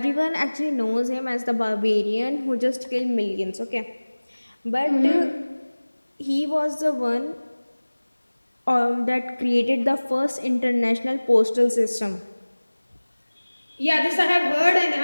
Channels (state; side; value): inverted; both; correlation -1.00